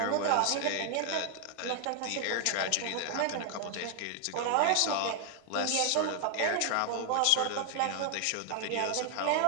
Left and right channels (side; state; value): both; different; correlation 0.00